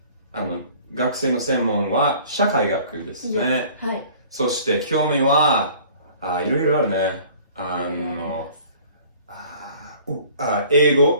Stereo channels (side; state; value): both; inverted; correlation -0.50